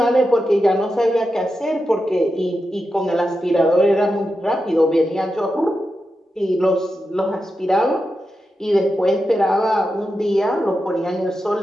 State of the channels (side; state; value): both; normal; correlation 0.89